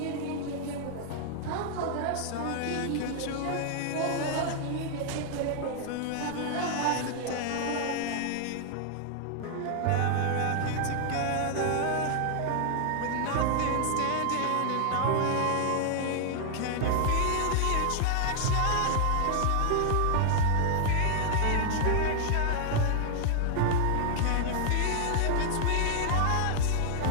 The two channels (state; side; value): different; both; correlation 0.00